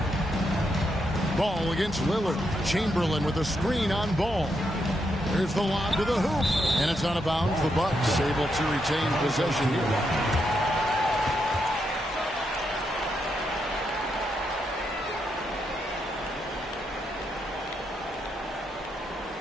Ball against Lillard. Chamberlain with a screen on Ball. There's the lob to the hoop. And it's out of bounds. The Bucks able to retain possession here.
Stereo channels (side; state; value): both; normal; correlation 0.81